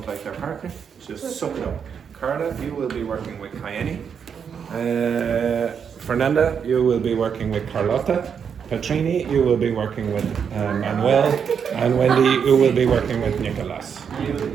like your partner, just suck it up. Carla, you will be working with Kayeni. Fernanda, you will be working with Carlotta. Petrini, you will be working with Manuel. And Wendy, you will be working with Nicolas.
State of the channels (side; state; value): left; quieter; 7.1 dB